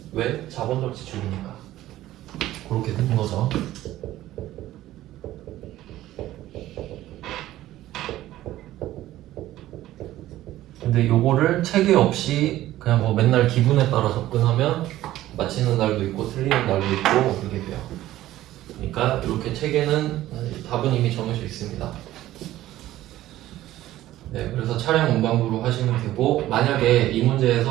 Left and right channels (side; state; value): left; quieter; 14.7 dB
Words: 왜? 자본적 지출이니까. 그렇게 된 거죠. 근데 요거를 체계 없이 그냥 뭐 맨날 기분에 따라 접근하면 맞히는 날도 있고 틀리는 날도 있고 그렇게 돼요. 그러니까 이렇게 체계는 답은 이미 정해져 있습니다. 네, 그래서 차량 운반부로 하시면 되고, 만약에 이